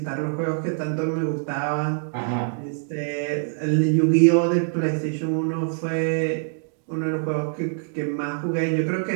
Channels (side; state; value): left; silent; 62 dB below the other